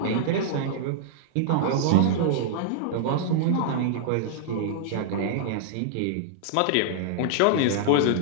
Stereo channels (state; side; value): different; both; correlation -0.01